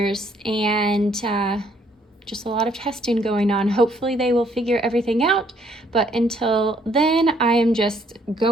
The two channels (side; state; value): both; normal; correlation 0.67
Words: and just a lot of testing going on. Hopefully they will figure everything out, but until then, I am just